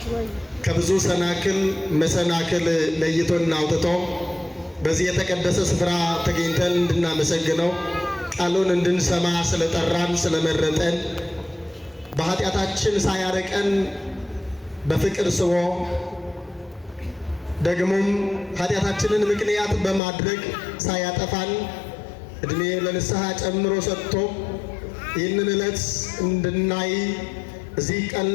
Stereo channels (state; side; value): drops out; right; at 20.0 s